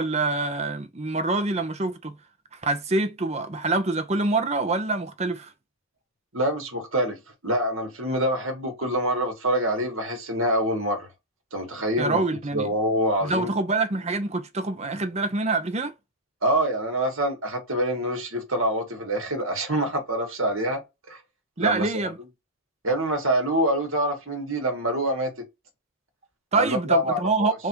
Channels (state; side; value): normal; both; correlation -0.06